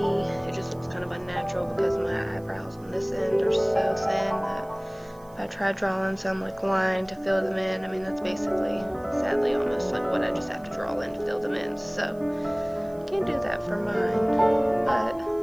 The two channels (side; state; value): right; noise; hiss, 28 dB below the sound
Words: it just looks kind of unnatural because my eyebrows on this end are so thin that if I try drawing some like line to fill them in, I mean that's basically, sadly, almost like what I just have to draw in to fill them in. So can't do that for mine, but